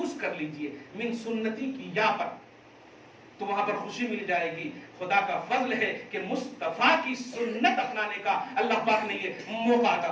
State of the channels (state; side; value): identical; both; correlation 1.00